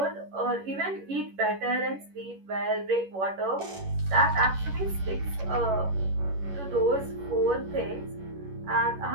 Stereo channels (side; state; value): left; late; 11 ms